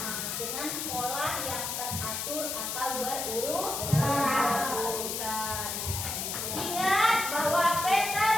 dengan pola yang teratur atau berurutan. Ingat bahwa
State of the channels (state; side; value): noise; left; hiss, 3 dB below the sound